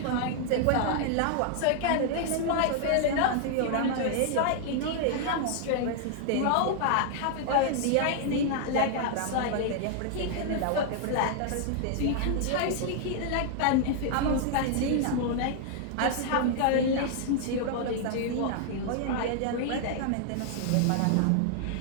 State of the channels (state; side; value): different; both; correlation 0.00